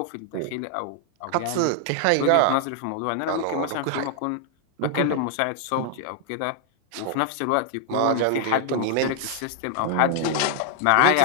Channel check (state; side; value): different; both; correlation 0.00